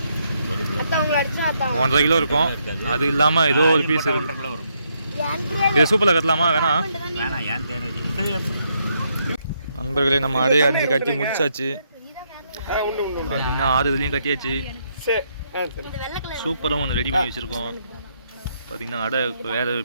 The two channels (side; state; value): both; inverted; correlation -0.76